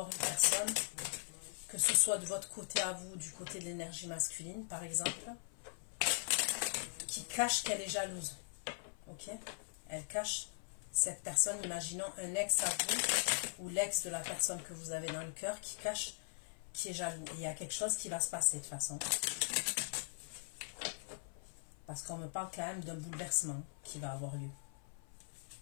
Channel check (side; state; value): right; silent; 51 dB below the other